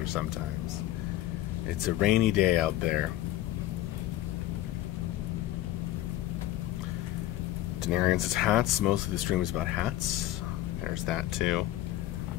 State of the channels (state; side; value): quieter; right; 14.4 dB